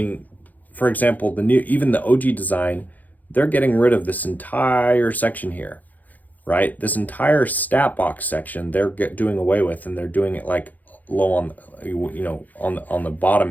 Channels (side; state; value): right; late; 0.081 ms